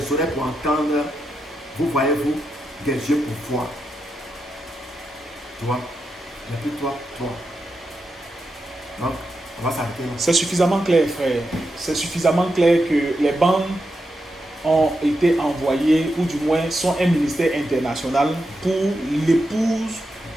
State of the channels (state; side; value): normal; both; correlation 0.86